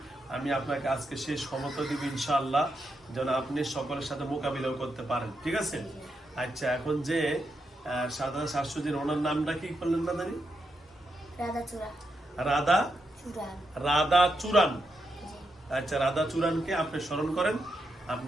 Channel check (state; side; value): normal; both; correlation 0.84